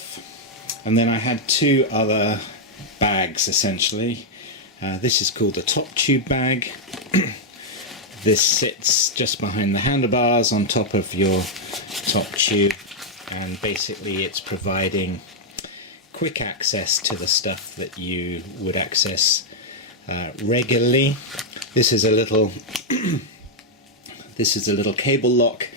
And then I had two other bags essentially. This is called a top tube bag. This sits just behind the handlebars on top of your top tube, and basically it's providing quick access to the stuff that you would access regularly. This is a little cable lock,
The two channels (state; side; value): normal; both; correlation -0.03